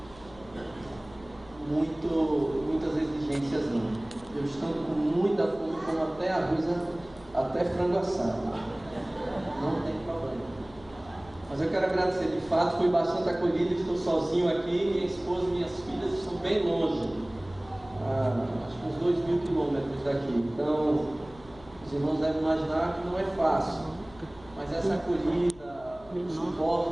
muitas exigências não. Eu estou com muita fome, como até arroz, até frango assado. Não tem problema. Mas eu quero agradecer, de fato, fui bastante acolhido, estou sozinho aqui, minha esposa e minhas filhas estão bem longe, acho que uns 2.000 quilômetros daqui. Então, os irmãos devem imaginar que não é fácil, mas essa acolhida, o suporte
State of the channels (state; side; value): noise; left; hum, 22 dB below the sound